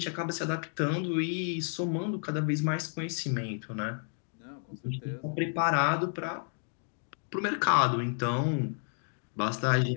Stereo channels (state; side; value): silent; right; 57 dB below the other